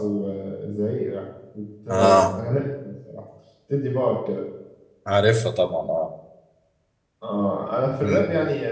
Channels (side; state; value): both; identical; correlation 1.00